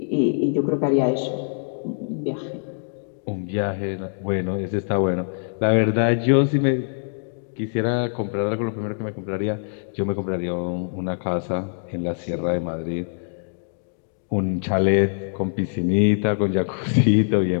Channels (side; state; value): right; silent; digital silence